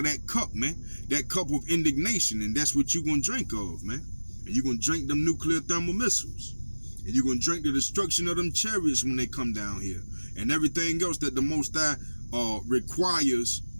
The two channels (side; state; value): both; inverted; correlation -1.00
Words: that cup, man. That cup of indignation. And that's what you're going to drink of, man. And you're going to drink them nuclear thermal missiles. And you're going to drink the destruction of them chariots when they come down here. And everything else that the Most High requires